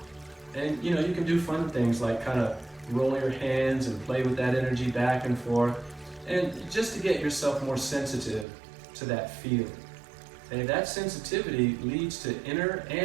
And you know, you can do fun things like kind of roll your hands and play with that energy back and forth, and just to get yourself more sensitive to that feeling. And that sensitivity leads to inner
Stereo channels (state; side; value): drops out; left; at 8.5 s